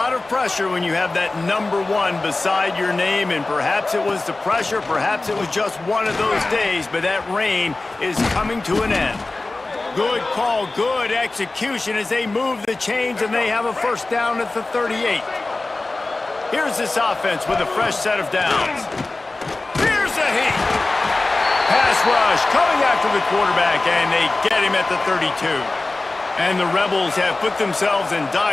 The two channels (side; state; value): right; quieter; 3.2 dB